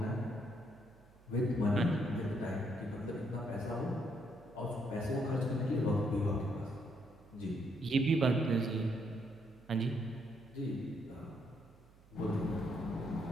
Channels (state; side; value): noise; right; hum, 26 dB below the sound